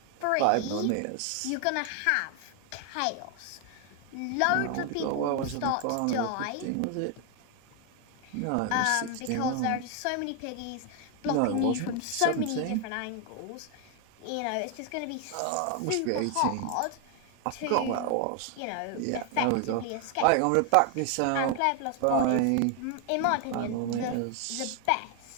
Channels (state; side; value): different; both; correlation 0.01